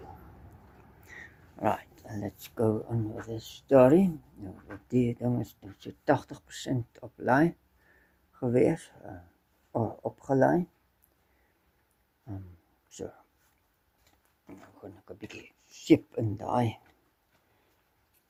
Right, and let's go on with this story. Nou, die ding is so 80% op laai gewees, opgelaai. So, nou gaan ek 'n bietjie seep in daai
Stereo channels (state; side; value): identical; both; correlation 1.00